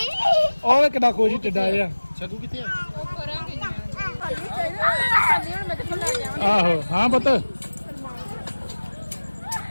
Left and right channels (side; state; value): both; inverted; correlation -1.00